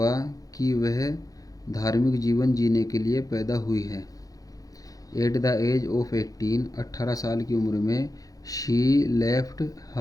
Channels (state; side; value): late; right; 0.17 ms